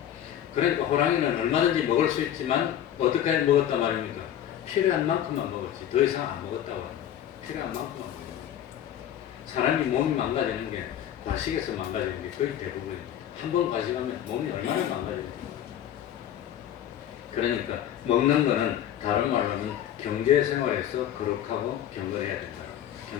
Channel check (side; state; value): right; quieter; 10.7 dB